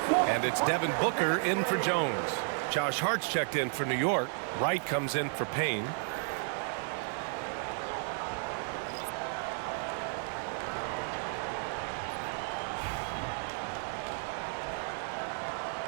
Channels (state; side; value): silent; left; 56 dB below the other